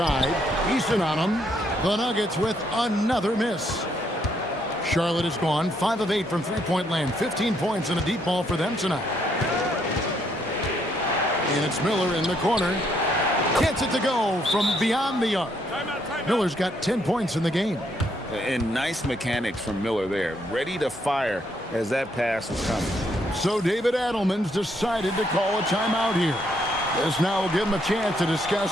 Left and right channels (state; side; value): normal; both; correlation 0.72